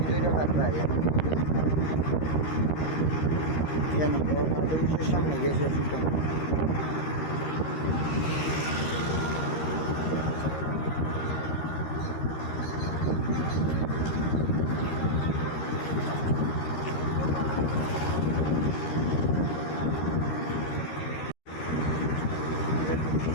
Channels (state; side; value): late; right; 13 ms